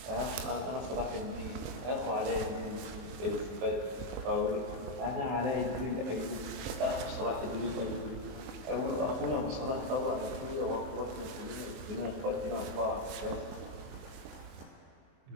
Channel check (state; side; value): late; left; 23 ms